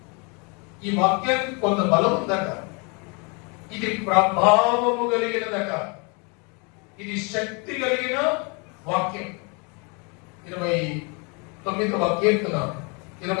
ఈ వాక్యానికి కొంత బలం ఉందట, ఇది ప్రభావము కలిగినదట, ఇది శక్తి కలిగిన వాక్యం. 29వ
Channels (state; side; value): quieter; right; 32.6 dB